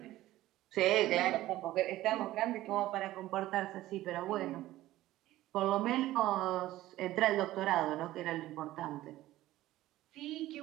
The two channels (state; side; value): quieter; left; 15.6 dB